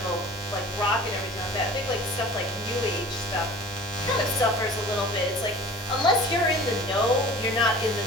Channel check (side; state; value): both; normal; correlation 0.42